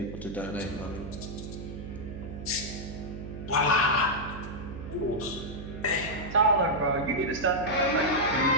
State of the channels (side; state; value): right; noise; hum, 10 dB below the sound